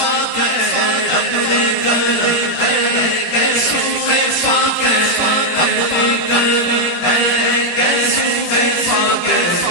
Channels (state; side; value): late; right; 18 ms